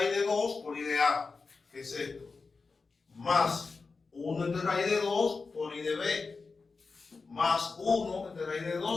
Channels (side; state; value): right; quieter; 4.4 dB